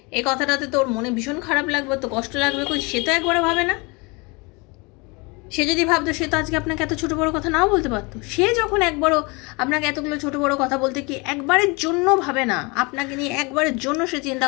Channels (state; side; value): quieter; right; 28.2 dB